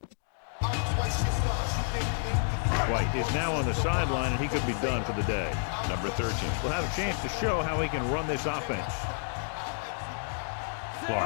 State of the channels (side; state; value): right; silent; digital silence